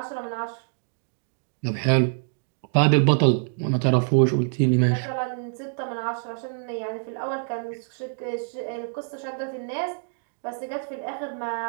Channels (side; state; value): left; silent; 58 dB below the other